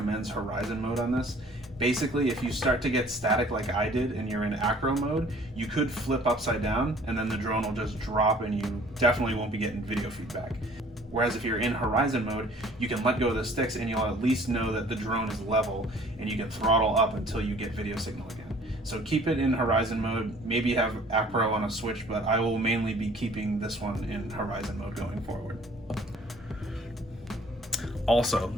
horizon mode on this. Basically, if you start to get static like I did and you're in acro mode, you could flip upside down and then the drone will just drop and you definitely won't be getting video feedback. Whereas if you're in horizon mode, you can let go of the sticks and you'll at least know that the drone is level and you can throttle up until you get video signal again. So keep it in horizon mode, maybe have acro on a switch, but I will mainly be keeping this one in horizon mode going forward. Also,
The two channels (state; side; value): normal; both; correlation 0.53